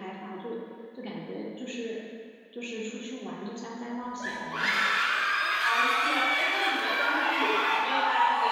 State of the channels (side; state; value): both; identical; correlation 1.00